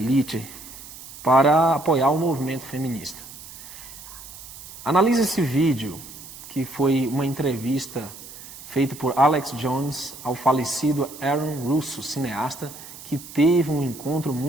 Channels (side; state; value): right; noise; hiss, 15 dB below the sound